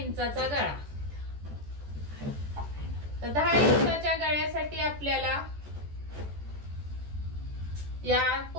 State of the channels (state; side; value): late; left; 14 ms